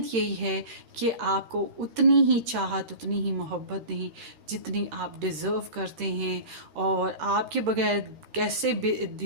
यही है कि आपको उतनी ही चाहत, उतनी ही मोहब्बत दें जितनी आप डिज़र्व करते हैं, और आपके बगैर कैसे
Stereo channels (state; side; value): late; left; 13 ms